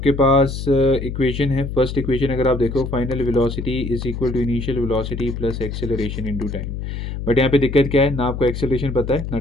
पास इक्वेशन है, फर्स्ट इक्वेशन अगर आप देखो, final velocity is equal to initial velocity plus acceleration into time. But यहाँ पे दिक्कत क्या है, ना आपको एक्सेलरेशन पता है ना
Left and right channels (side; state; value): left; noise; hum, 6 dB below the sound